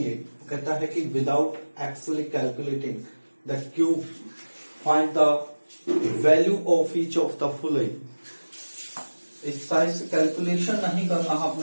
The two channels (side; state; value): both; inverted; correlation -1.00